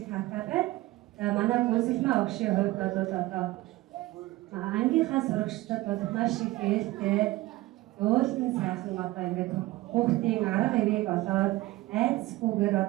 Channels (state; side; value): quieter; left; 18.7 dB